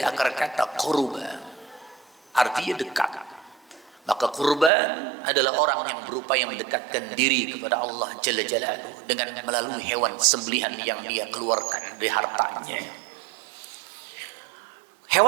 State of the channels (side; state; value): left; drops out; at 4.7 s